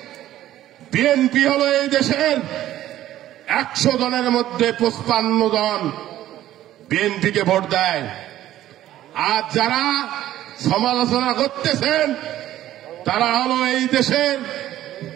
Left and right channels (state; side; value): quieter; left; 13.4 dB